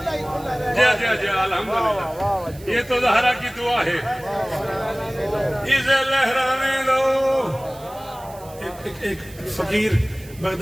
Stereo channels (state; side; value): noise; right; hiss, 22 dB below the sound